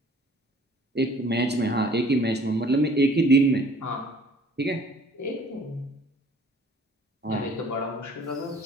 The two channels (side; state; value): both; normal; correlation 0.53